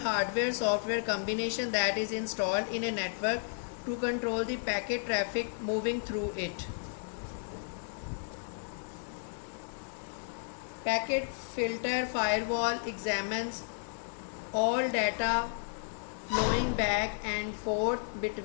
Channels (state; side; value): silent; right; digital silence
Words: combination that is installed in a network to control the packet traffic moving through it. Packet filter firewall examines all data flowing back and forth